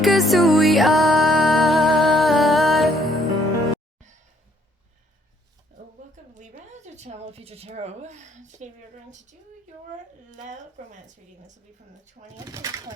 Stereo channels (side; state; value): both; normal; correlation 0.66